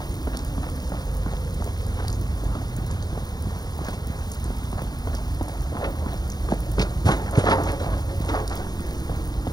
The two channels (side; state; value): right; late; 0.19 ms